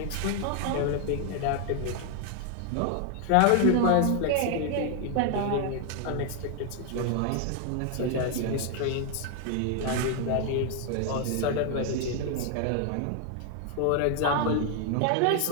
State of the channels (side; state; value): both; different; correlation 0.00